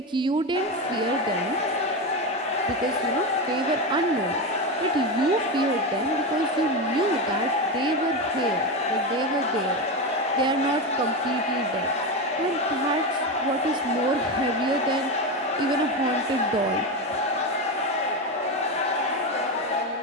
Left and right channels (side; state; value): both; normal; correlation 0.15